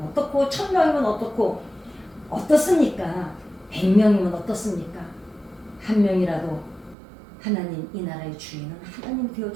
어떻고 1000명이면 어떻고 어떻습니까? 100명이면 어떻습니까? 한 명이라도 하나님 이 나라의 주인은 하나님 되어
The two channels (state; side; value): drops out; left; at 7.0 s